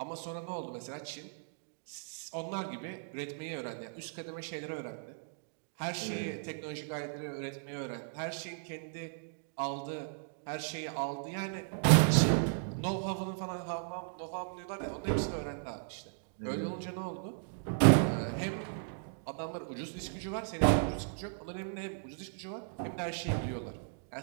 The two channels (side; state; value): left; silent; digital silence